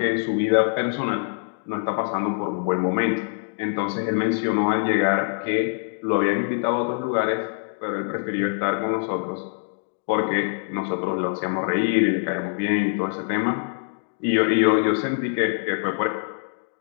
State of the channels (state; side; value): silent; right; digital silence